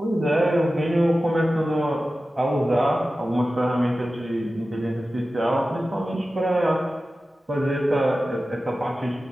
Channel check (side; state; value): both; normal; correlation 0.95